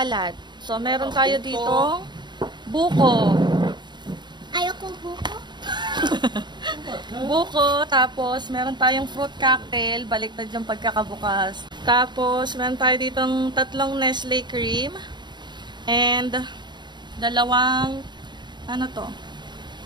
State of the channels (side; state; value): left; late; 0.22 ms